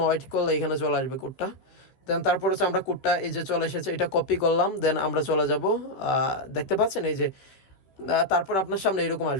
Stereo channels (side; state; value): right; late; 15 ms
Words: ওয়েট করলে এখানে চলে আসবে কোডটা। দেন তারপর আমরা কোডটা এই যে চলে এসেছে, এটা কপি করলাম। দেন আমরা চলে যাব, দেখতে পাচ্ছেন এই যে তারপর আপনার সামনে এরকম